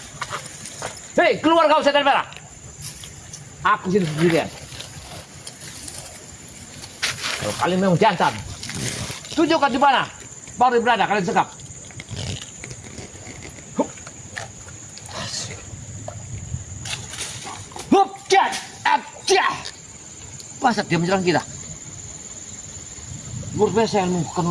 Hei, keluar kau setan merah. Aku sini sendirian. Kalau kalian memang jantan, tunjukkan di mana baru berada kalian sekap. Hup, cat, abjah. Pasat dia menyerang kita. Luar biasa ilmu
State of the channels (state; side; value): identical; both; correlation 1.00